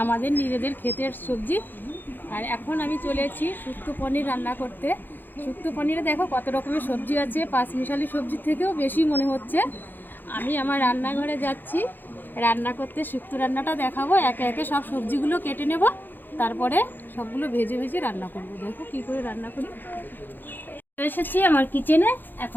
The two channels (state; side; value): late; right; 0.091 ms